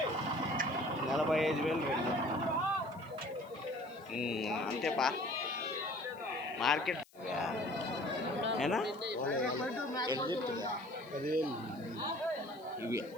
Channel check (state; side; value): noise; left; hiss, 28 dB below the sound